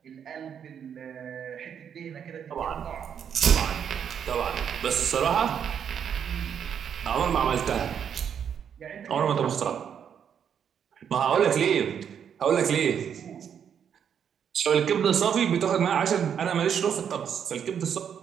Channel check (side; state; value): left; quieter; 8.1 dB